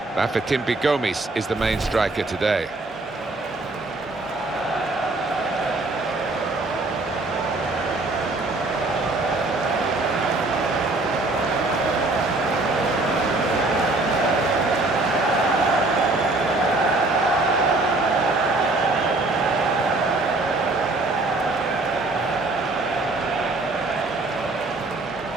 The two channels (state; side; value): quieter; left; 3.1 dB